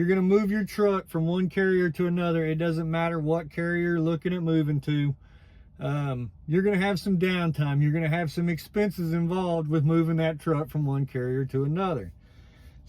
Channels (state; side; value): identical; both; correlation 1.00